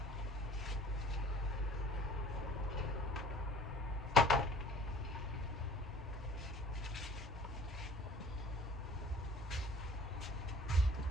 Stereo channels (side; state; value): both; normal; correlation 0.50